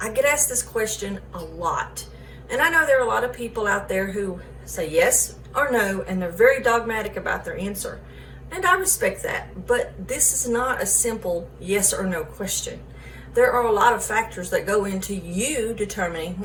get asked this question a lot. And I know there are a lot of people out there who say yes or no, and they're very dogmatic about their answer. And I respect that, but this is not a simple yes or no question. There are a lot of factors that go into you determining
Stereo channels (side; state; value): both; identical; correlation 1.00